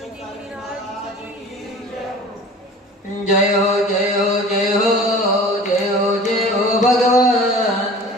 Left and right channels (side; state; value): both; normal; correlation 0.42